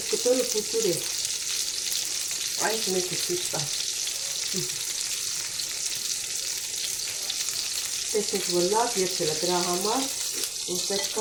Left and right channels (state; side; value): noise; left; rumble, 25 dB below the sound